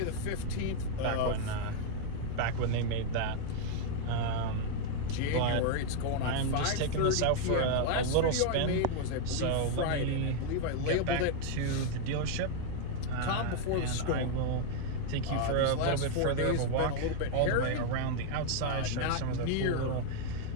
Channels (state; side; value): different; both; correlation 0.00